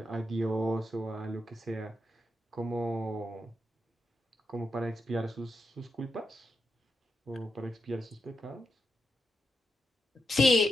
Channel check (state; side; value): normal; both; correlation 0.85